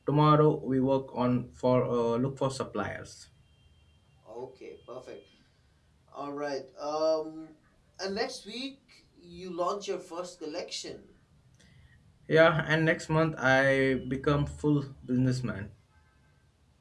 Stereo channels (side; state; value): both; identical; correlation 1.00